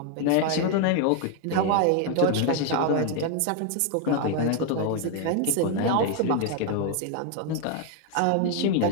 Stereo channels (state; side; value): different; both; correlation 0.01